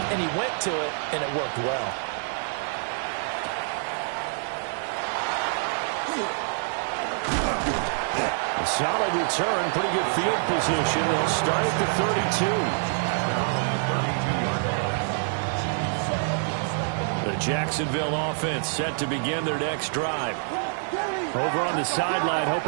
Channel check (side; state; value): left; silent; digital silence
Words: and he went to it, and it worked well. Solid return, pretty good field position. They'll start at the 32. The Jacksonville offense set to begin their next drive. Over on the sideline,